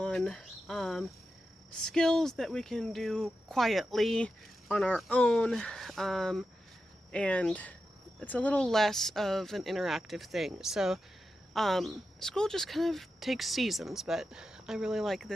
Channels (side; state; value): both; normal; correlation 0.90